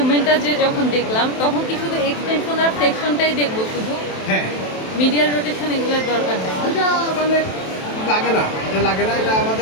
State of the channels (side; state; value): right; late; 27 ms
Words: যে যখন দেখলাম তখন কি শুধু এক্সটেনশন আর ফ্লেকশনটাই দেখবো শুধু, হ্যাঁ, মিডিয়াল রোটেশন এগুলোর দরকার নেই? এটা মানে লাগে না, এটা লাগে না, এটা